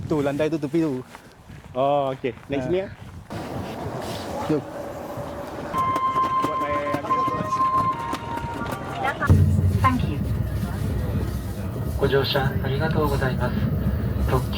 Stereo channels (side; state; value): both; identical; correlation 1.00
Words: Tu landai tu tepi tu. Oh, okey. Naik sini ya. Jom. Buat naik Thank you. ご乗車ありがとうございます。特